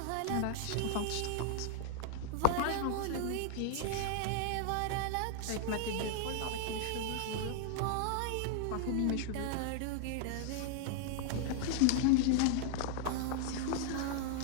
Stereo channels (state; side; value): different; both; correlation 0.00